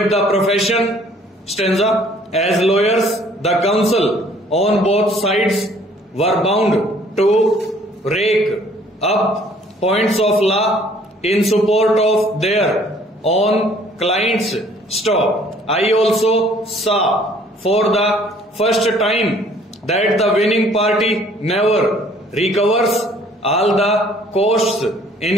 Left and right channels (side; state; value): both; normal; correlation 0.58